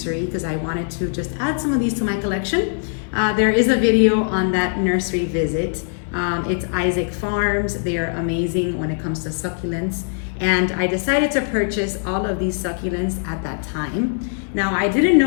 because I wanted to just add some of these to my collection. There is a video on that nursery visit. It's Isaac Farms. They are amazing when it comes to succulents. And I decided to purchase all of these succulents at that time. Now, I didn't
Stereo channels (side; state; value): right; silent; 65 dB below the other